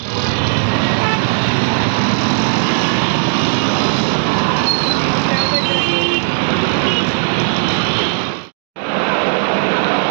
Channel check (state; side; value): silent; left; digital silence